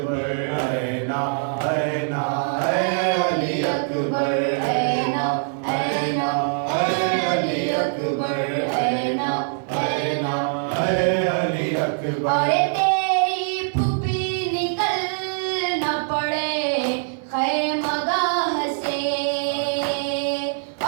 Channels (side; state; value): left; silent; digital silence